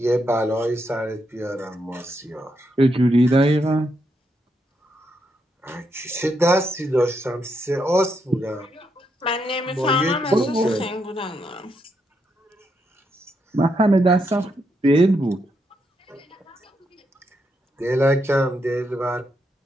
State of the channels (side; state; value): both; normal; correlation 0.80